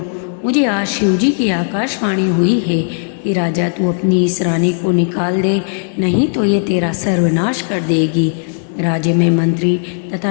मुझे आज शिवजी की आकाशवाणी हुई है कि राजा तू अपनी इस रानी को निकाल दे, नहीं तो ये तेरा सर्वनाश कर देगी। राज्य में मंत्री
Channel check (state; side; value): silent; right; digital silence